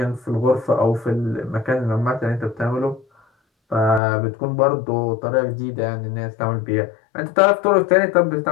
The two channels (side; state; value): right; drops out; at 4.0 s